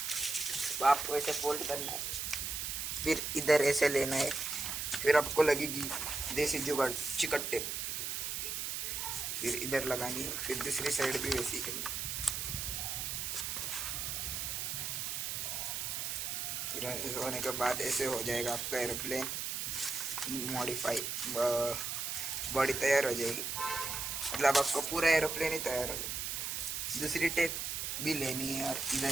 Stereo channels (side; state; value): right; noise; hiss, 2 dB below the sound